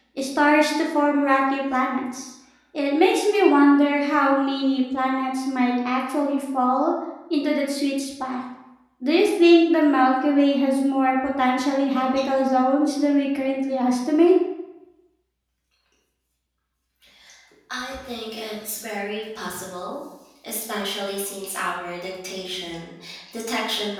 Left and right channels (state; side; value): identical; both; correlation 1.00